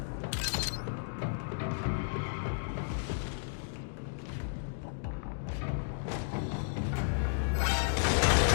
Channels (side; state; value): right; silent; digital silence